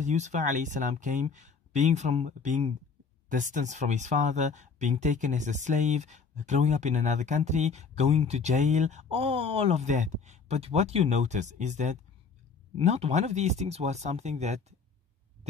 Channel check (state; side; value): quieter; right; 5.3 dB